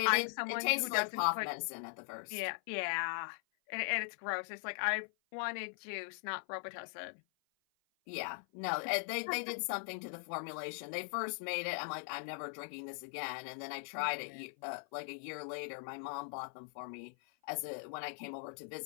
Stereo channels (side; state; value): right; silent; 51 dB below the other